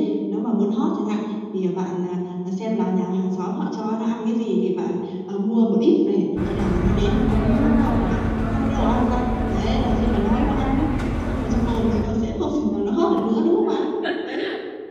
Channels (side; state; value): both; identical; correlation 1.00